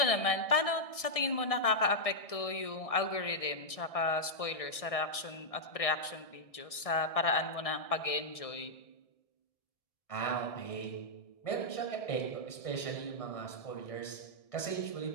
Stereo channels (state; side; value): late; right; 1.6 ms